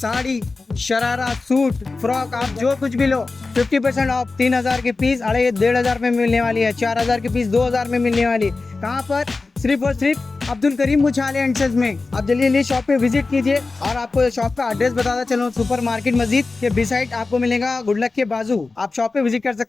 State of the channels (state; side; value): quieter; right; 3.8 dB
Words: शरारा, सूट, फ्रॉक, आप जो कुछ भी लो 50% ऑफ। 3,000 के पीस 1,500 में मिलने वाली है। 4,000 के पीस 2,000 में मिलने वाली। कहाँ पर? सिर्फ और सिर्फ अब्दुल करीम उछाले एंड सन्स में। आप जल्दी शॉप पे विजिट कीजिए। और आपको शॉप का एड्रेस बताता चलो, सुपर मार्केट मस्जिद के बिसाइड आपको मिलेगा, गुडलक के बाजू। आप शॉप पे विजिट कर